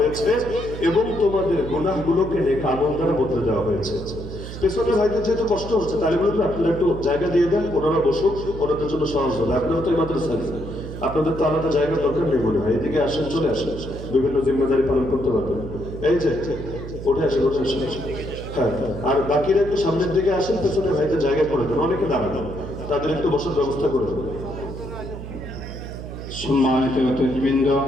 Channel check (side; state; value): right; noise; hum, 10 dB below the sound